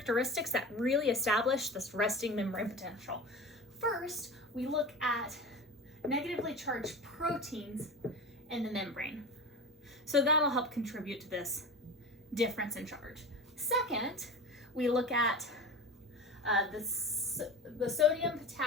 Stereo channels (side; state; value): both; normal; correlation 0.30